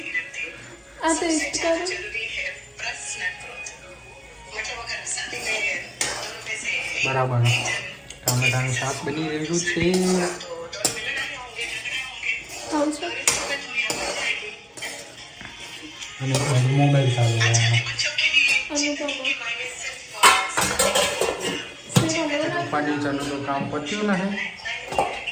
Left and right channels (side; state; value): both; identical; correlation 1.00